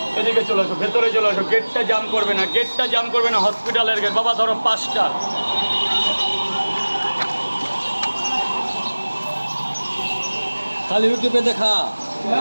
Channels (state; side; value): inverted; both; correlation -1.00